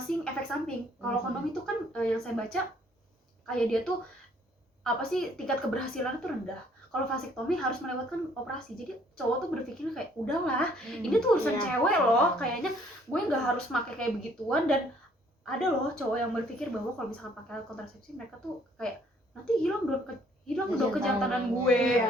efek samping. Kalau kondom itu kan yang saya baca kayak dia tuh apa sih, tingkat keberhasilan itu rendah. Kalau vasektomi harus melewatkan operasi. Jadi cowok tuh berpikir kayak udahlah, ini tuh urusan Iya. cewek loh, kayaknya gue nggak harus pakai kayak begituan. Dan ada loh cowok yang berpikir bahwa kalau misalkan pakai alat kontrasepsi mereka tuh kayak nanti hilang dong kejantanan gue.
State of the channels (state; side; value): normal; both; correlation 0.62